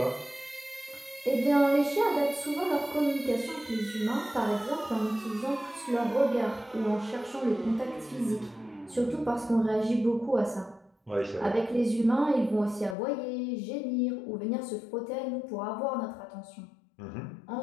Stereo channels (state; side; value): drops out; right; at 13.0 s